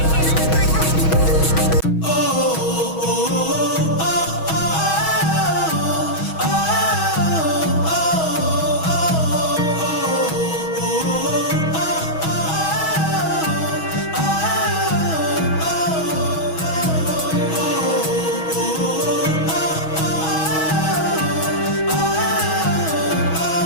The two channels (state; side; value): late; right; 6.2 ms